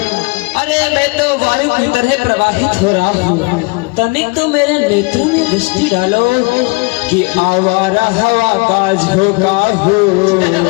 अरे मैं तो वायु की तरह प्रवाहित हो रहा हूँ, तनिक तो मेरे नेत्रों में दृष्टि डालो कि आवारा हवा का झोंका हो।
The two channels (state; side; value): quieter; right; 29.7 dB